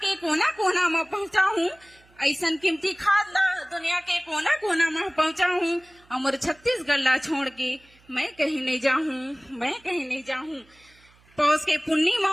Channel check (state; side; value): noise; right; hum, 30 dB below the sound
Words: कोना कोना में पहुंचाऊं, ऐसन कीमती खाद ला दुनिया के कोना कोना में पहुंचाऊं। अमर छत्तीसगढ़ ला छोड़ के मैं कहीं नहीं जाऊं, पौष के